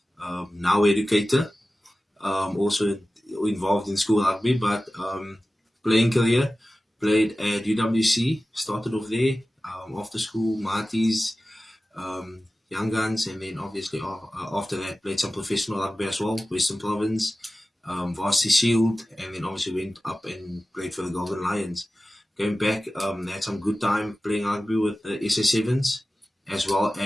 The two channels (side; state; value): both; normal; correlation 0.96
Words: now educator, also involved in school rugby, but playing career, played at UWC, started off there, after school, Marties, Young Guns, and then obviously after that played some professional rugby as well, Western Province, Varsity Shield, and then obviously went up and played for the Golden Lions. Going back, had some good time playing rugby with the SA7s, as well